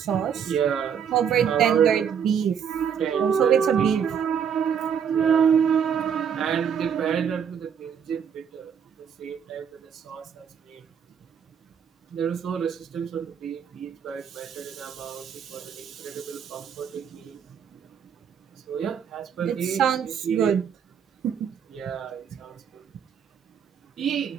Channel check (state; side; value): quieter; left; 7.7 dB